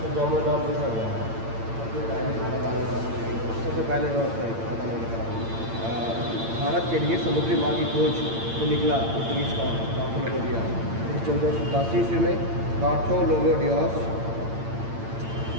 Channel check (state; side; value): late; left; 8.8 ms